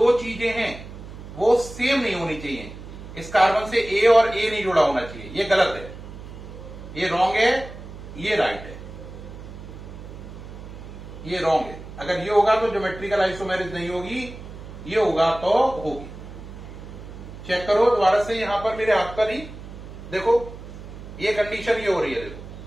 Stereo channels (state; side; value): noise; right; hum, 13 dB below the sound